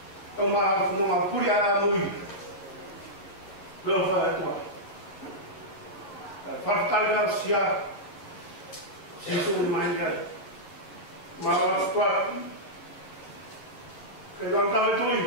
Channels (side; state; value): right; late; 11 ms